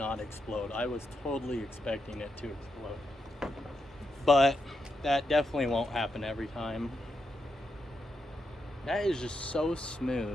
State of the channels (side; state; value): both; normal; correlation 0.84